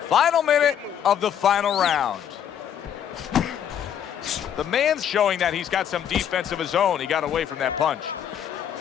Final minute of the final round. The man's showing that he's got some defense of his own. He got away from that punch.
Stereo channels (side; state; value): right; quieter; 9.3 dB